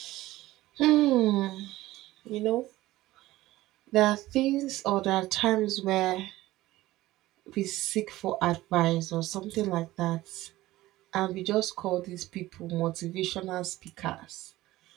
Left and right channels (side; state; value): left; quieter; 16.9 dB